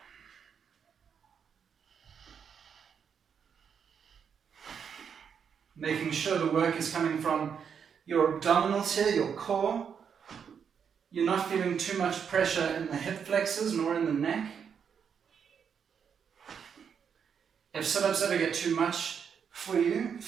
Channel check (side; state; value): left; quieter; 7.2 dB